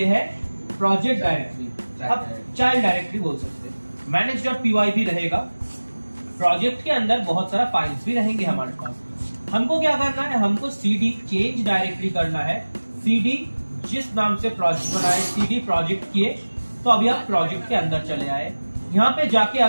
है प्रोजेक्ट डायरेक्टरी, अब चाइल्ड डायरेक्टरी बोल सकते हैं। manage.py भी रहेगा। प्रोजेक्ट के अंदर बहुत सारा फाइल्स भी रहेंगे हमारे पास। हमको क्या करना है, हमको cd चेंज डायरेक्टरी करना है। cd जिस नाम से प्रोजेक्ट बनाए, cd प्रोजेक्ट किए, तो अभी आप प्रोजेक्ट के अंदर चले आए। यहाँ पे जाके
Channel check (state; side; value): inverted; both; correlation -1.00